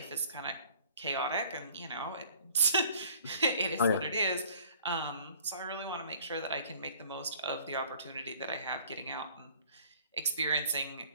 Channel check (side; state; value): both; inverted; correlation -0.52